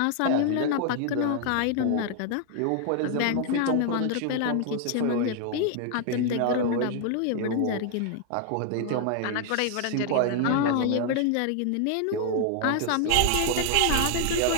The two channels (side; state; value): both; different; correlation 0.00